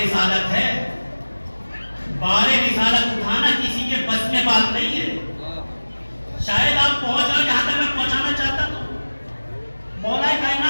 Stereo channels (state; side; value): inverted; both; correlation -1.00